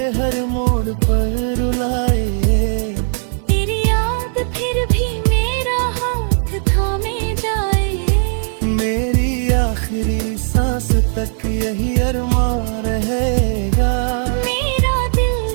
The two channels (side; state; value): left; silent; 68 dB below the other